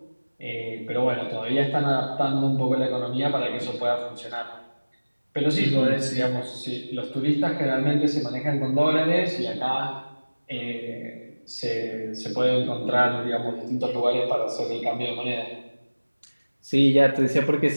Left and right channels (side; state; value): both; inverted; correlation -1.00